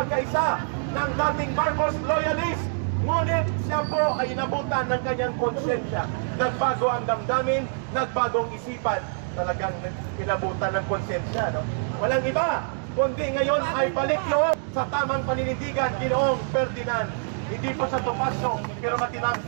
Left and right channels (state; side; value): silent; left; digital silence